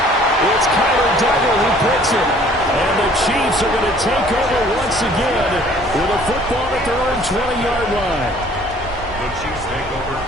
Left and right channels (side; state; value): both; normal; correlation 0.55